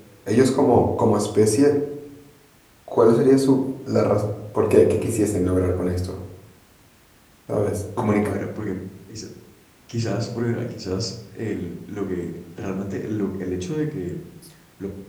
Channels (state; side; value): identical; both; correlation 1.00